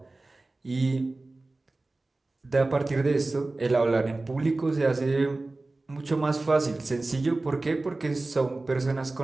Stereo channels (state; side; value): quieter; left; 3.1 dB